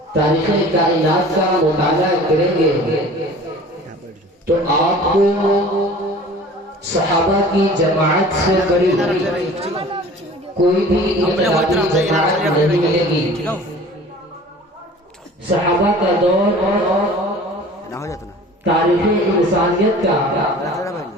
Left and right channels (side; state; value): both; normal; correlation 0.45